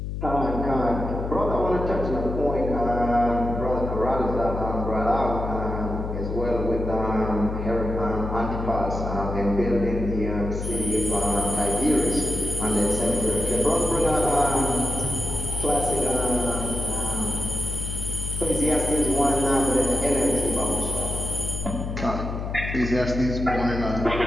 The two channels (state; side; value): noise; left; hum, 5 dB below the sound